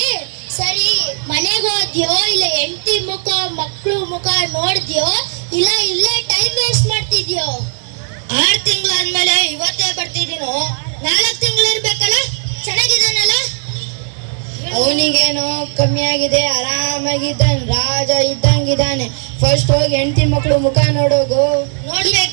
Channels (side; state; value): left; silent; 69 dB below the other